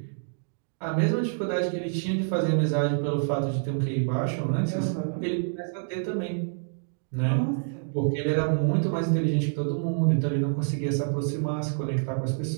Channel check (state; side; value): silent; left; digital silence